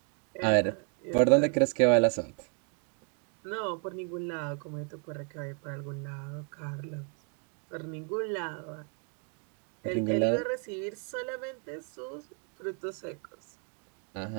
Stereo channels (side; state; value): left; quieter; 38.7 dB